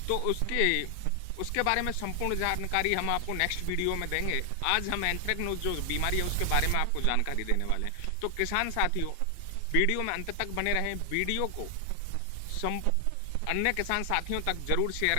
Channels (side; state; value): both; different; correlation 0.00